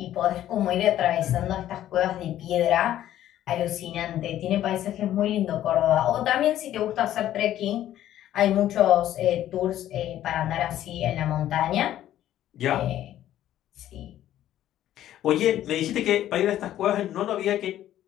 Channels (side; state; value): right; quieter; 12.4 dB